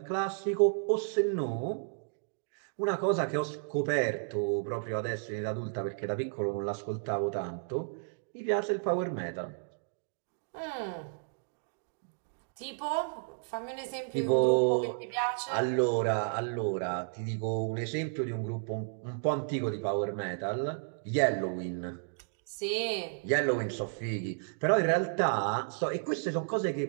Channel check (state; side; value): silent; left; digital silence